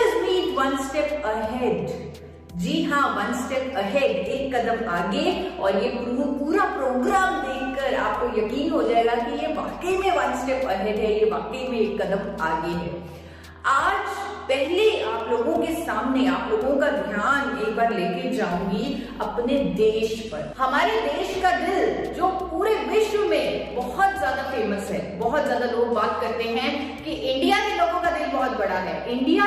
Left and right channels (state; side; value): identical; both; correlation 1.00